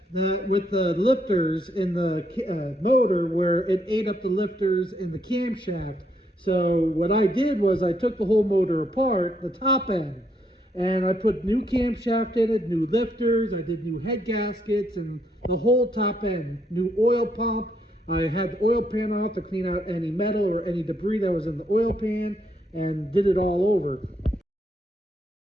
with the lifters in the motor where it ate up the lifters in the camshaft. So what I did was I took the whole motor apart, the top end, and I put new camshaft in it, new lifters, I did new head gaskets and the whole top end, new oil pump. I had the oil pan off to clean out any metal or any debris that was in the oil pan and did it all over.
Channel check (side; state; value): both; normal; correlation 0.74